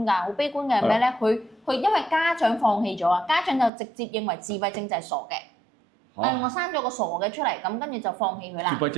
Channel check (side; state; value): left; drops out; at 3.7 s